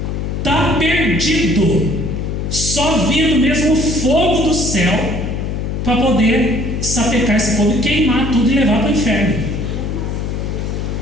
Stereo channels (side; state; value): left; noise; hum, 3 dB below the sound